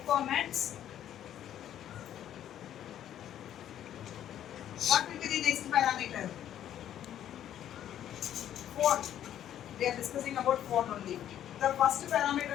What will be the next parameter? Phone. We are discussing about phone only. The first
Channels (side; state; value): right; quieter; 10.9 dB